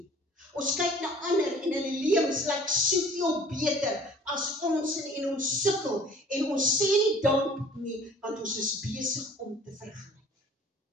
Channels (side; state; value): both; normal; correlation 0.50